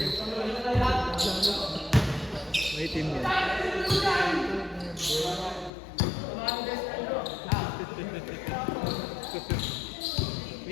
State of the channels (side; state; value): right; drops out; at 5.7 s